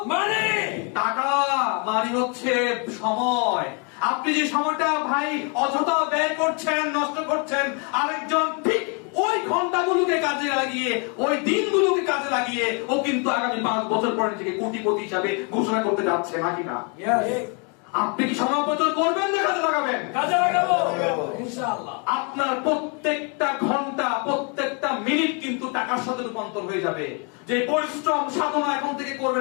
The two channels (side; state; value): right; quieter; 35.5 dB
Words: money. টাকা, মানি হচ্ছে সময়। আপনি যে সময়টা ভাই অযথা ব্যয় করছেন, নষ্ট করছেন, আরেকজন ঠিক ওই ঘন্টাগুলোকে কাজে লাগিয়ে, ওই দিনগুলোকে কাজে লাগিয়ে ও কিন্তু আগামী 5 বছর পরে নিজেকে কোটিপতি হিসাবে ঘোষণা করতে যাচ্ছে, নাকি না? ইয়েস। আপনি কি সময় অপচয় করবেন না কাজে লাগাবেন? কাজে লাগাবো ইনশাআল্লাহ। আপনার প্রত্যেকটা ঘন্টা, প্রত্যেকটা মিনিট কিন্তু টাকার সাথে রূপান্তর হয়ে যাবে। যে পরিশ্রম সাধনা এখন থেকে